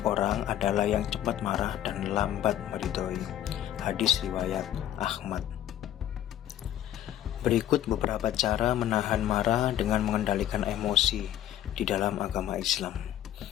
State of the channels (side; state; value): right; quieter; 11.8 dB